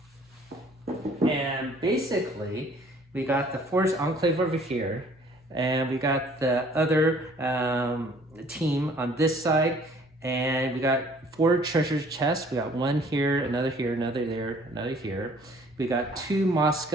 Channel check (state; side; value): normal; both; correlation 0.56